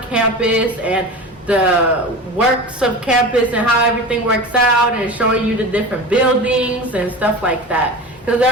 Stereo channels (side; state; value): both; normal; correlation 0.31